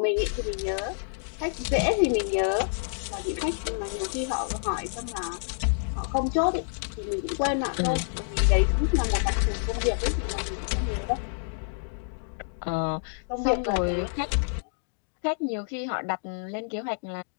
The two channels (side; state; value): right; silent; digital silence